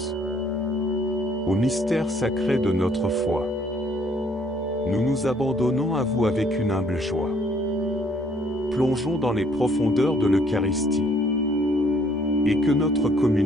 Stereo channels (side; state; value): both; normal; correlation 0.64